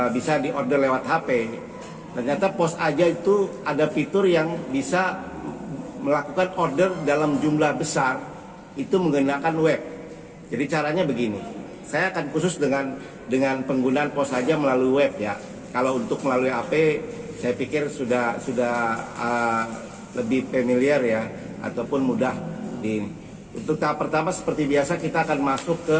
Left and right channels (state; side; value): identical; both; correlation 1.00